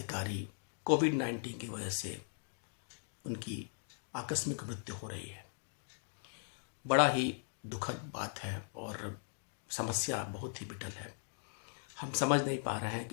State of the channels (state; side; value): silent; right; digital silence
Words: कोविड-19 की वजह से उनकी आकस्मिक मृत्यु हो रही है। बड़ा ही दुखद बात है और समस्या बहुत ही विकट है। हम समझ नहीं पा रहे हैं